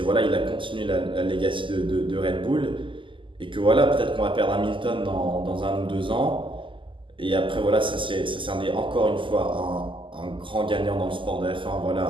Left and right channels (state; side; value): late; left; 0.25 ms